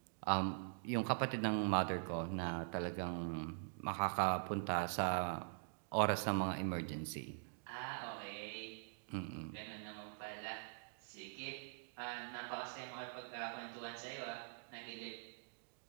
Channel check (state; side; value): silent; left; digital silence